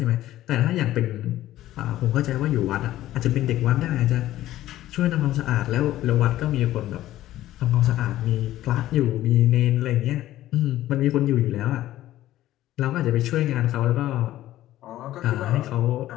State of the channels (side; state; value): right; quieter; 14.4 dB